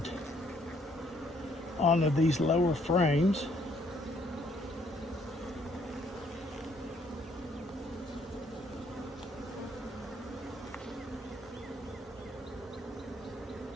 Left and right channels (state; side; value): normal; both; correlation 0.67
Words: onto these lower frames.